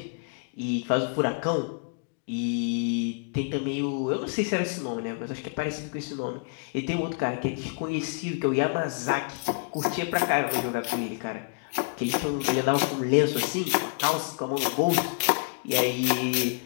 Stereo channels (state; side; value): quieter; right; 36.4 dB